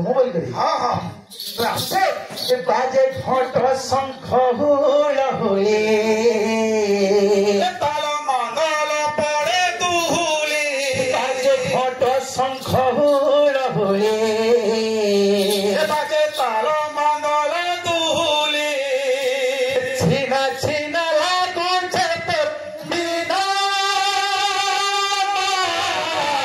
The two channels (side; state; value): both; identical; correlation 1.00